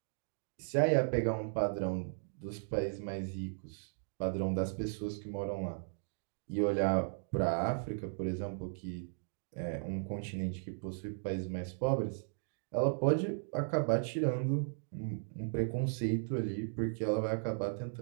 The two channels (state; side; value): silent; left; digital silence